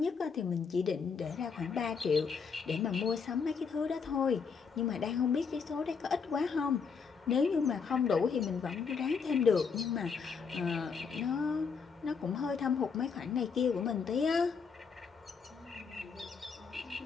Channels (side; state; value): right; quieter; 5.7 dB